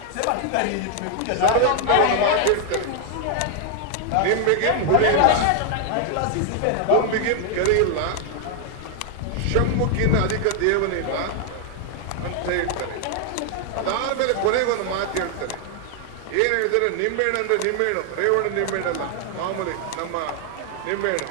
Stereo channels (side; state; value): both; different; correlation 0.00